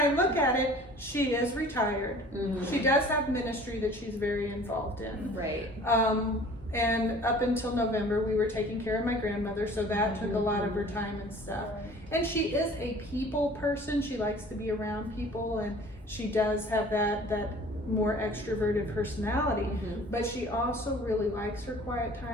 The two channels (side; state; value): both; normal; correlation 0.48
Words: look at it, she is retired. Mhm. She does have ministry that she's very involved in. Right. And up until November, we were taking care of my grandmother, so that took a lot of her time and stuff. And she is a people person. She likes to be around people, and she does have that more extroverted personality. Mhm. But she also really likes her quiet